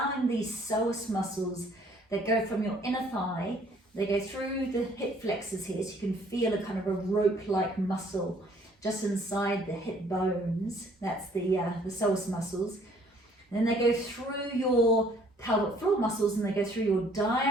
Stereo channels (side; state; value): both; normal; correlation 0.60